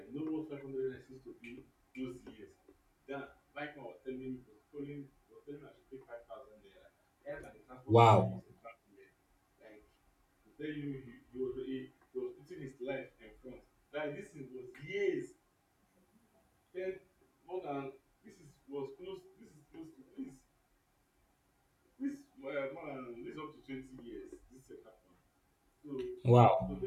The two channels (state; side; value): identical; both; correlation 1.00